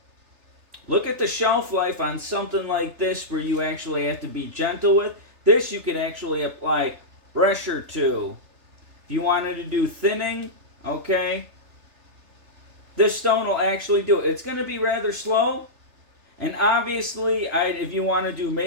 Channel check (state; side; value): late; left; 3.3 ms